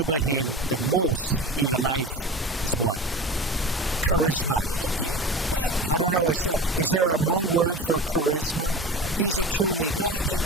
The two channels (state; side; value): normal; both; correlation 0.33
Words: him the most in your life is what? Charisma. I don't know, is there a Hmong word for charisma? He's a true leader.